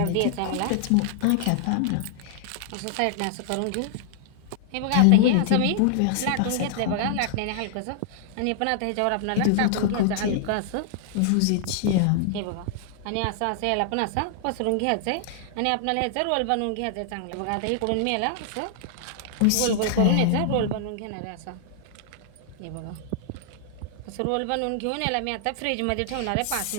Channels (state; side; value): different; both; correlation -0.01